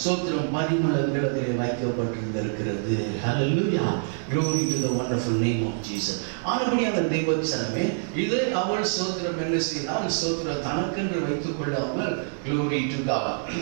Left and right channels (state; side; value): silent; left; digital silence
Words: சோத்திரம் பரிமளங்கள் அதில் வைக்கப்பட்டிருந்திருக்கிறது. ஹல்லேலூயா. Glory to the wonderful name of Jesus. ஆனபடியான தேவச்சனமே இதை அவள் சோத்திரம் என்ன செய்தால், சோத்திரம் தனக்கென்று வைத்துக் கொள்ளாமல் Glory to God.